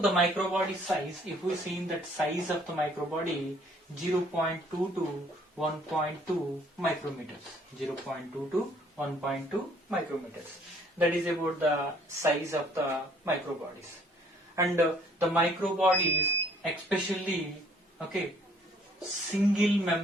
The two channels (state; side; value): normal; both; correlation 0.61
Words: microbody size, if we see in that size of the microbody, 0.2 to 1.2 micrometers. 0.2 to 1.2 micrometers. That is about the size of the microbodies. And the microbodies, especially, single